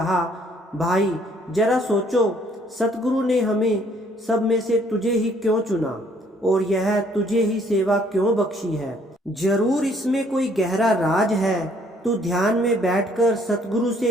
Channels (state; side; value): normal; both; correlation 0.63